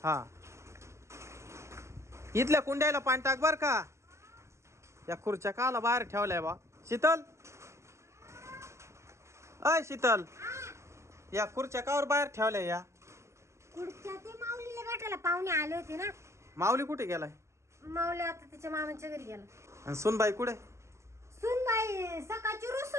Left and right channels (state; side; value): late; left; 0.13 ms